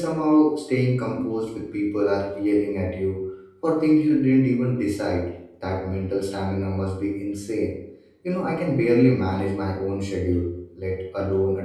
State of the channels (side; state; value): both; identical; correlation 1.00